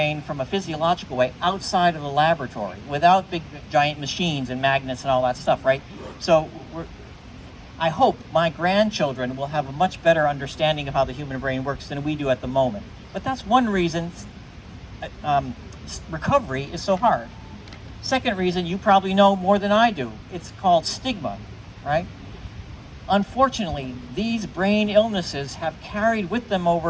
from a physiological way outside of the laboratory, without big, giant machines and magnets and all that stuff, right? So I hope my grandchildren will have a much better understanding of how the human brain works than we do at the moment. But that's one reason recovery is so hard. Second reason, you probably know more than I do. It's called stigma, right? Unfortunately, these brain illnesses have carried with them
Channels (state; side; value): identical; both; correlation 1.00